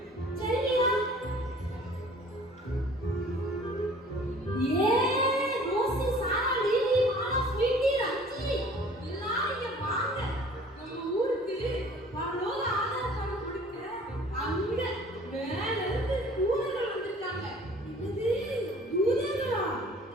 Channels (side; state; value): both; normal; correlation 0.51